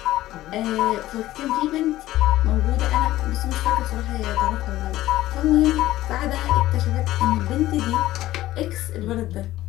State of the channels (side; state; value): right; quieter; 15.4 dB